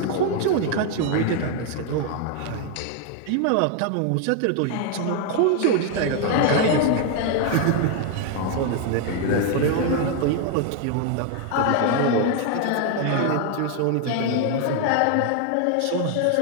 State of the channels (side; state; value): both; different; correlation 0.00